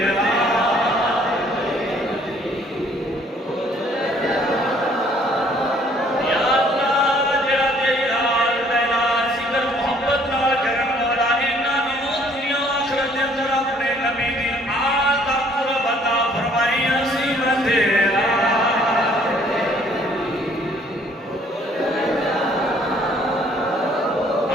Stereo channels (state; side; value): normal; both; correlation 0.61